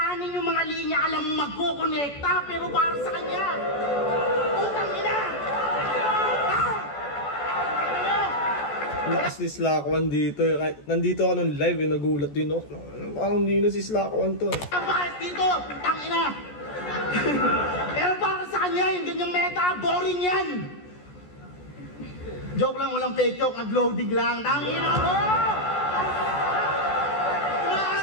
yung mga linya, alam mo magkukonekta, pero para sa kanya. Putang ina! Lakas ni Slack One dito. Nandito ako nung live, nagulat din ako. Parang hindi na si Slack One to. Ang bakas dito, putang ina! Pero para sa kanya, yung ganyang meta, boring yan! Joke lang, walang fake joke, nag-loading lang. Tangina mo!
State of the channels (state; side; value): late; right; 14 ms